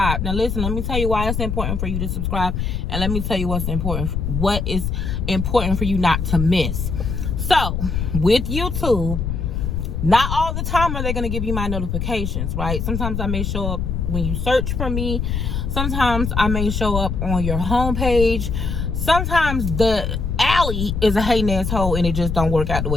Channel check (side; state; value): left; noise; rumble, 2 dB below the sound